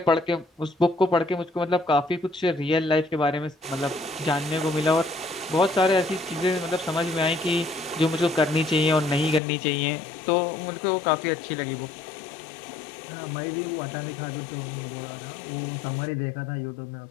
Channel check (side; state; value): right; drops out; at 9.4 s